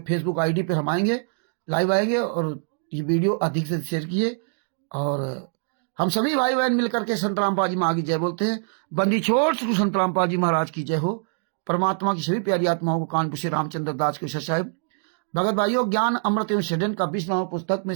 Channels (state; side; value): silent; left; digital silence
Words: फेसबुक आईडी पर हम आएंगे, लाइव आएंगे, और ये वीडियो अधिक से शेयर किए। और हम सभी भाई बहन मिलकर के संत रामपाल जी माँ की जय बोलते हैं। बंदी छोड़ श्री संत रामपाल जी महाराज की जय हो। परमात्मा की सभी प्यारी आत्माओं को कानपुर से रामचंद्र दास के साहब। भगत भाइयों, ज्ञान अमृत एवं षड्यंत्र का 20वां पुस्तक में